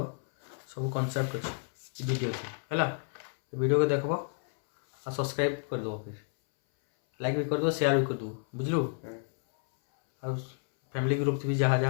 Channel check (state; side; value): silent; right; 58 dB below the other